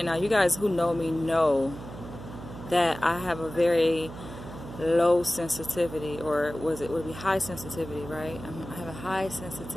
now you guys who know me know that I have a very low sensitivity, or would it be high sensitivity, right? I have a high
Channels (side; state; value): right; noise; hum, 12 dB below the sound